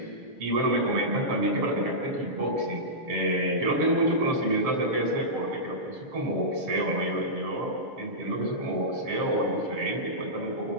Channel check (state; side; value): late; left; 6.8 ms